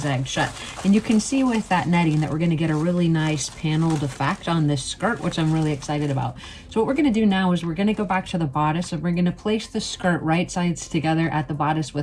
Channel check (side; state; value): both; identical; correlation 1.00